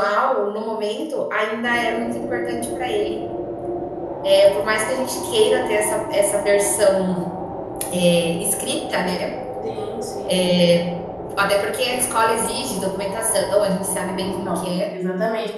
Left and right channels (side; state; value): both; identical; correlation 1.00